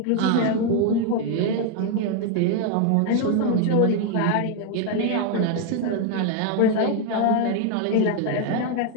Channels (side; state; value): both; different; correlation 0.01